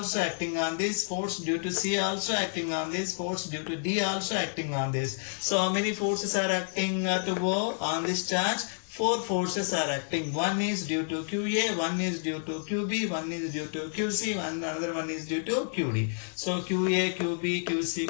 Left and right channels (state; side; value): silent; right; digital silence